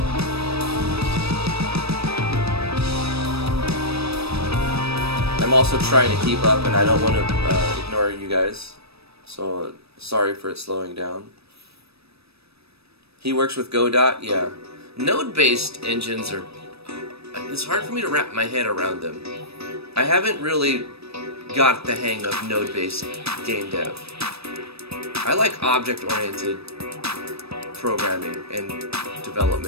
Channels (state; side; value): late; left; 0.78 ms